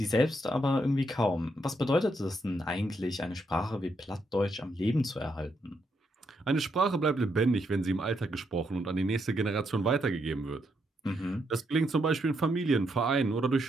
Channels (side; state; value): both; normal; correlation 0.78